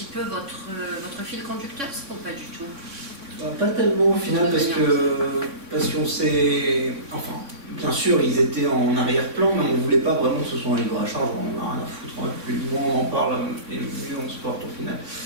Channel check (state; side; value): late; left; 3.6 ms